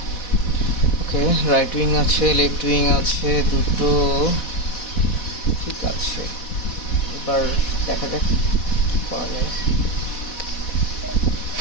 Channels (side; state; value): right; late; 4.1 ms